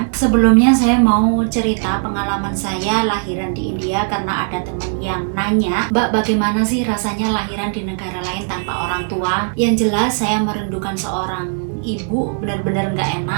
Sebelumnya saya mau cerita pengalaman saya lahiran di India, karena ada teman yang nanya, "Mbak, bagaimana sih rasanya lahiran di negara lain tanpa orang tua?" Yang jelas saya merindukan seorang ibu, benar-benar nggak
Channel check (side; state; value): left; silent; 59 dB below the other